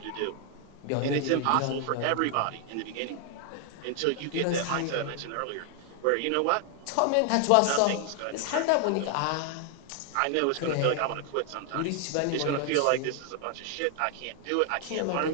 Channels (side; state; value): both; different; correlation 0.00